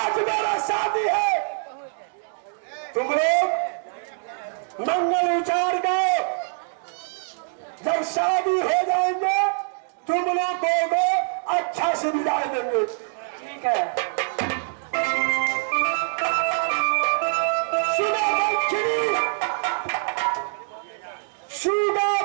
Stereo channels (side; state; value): left; silent; digital silence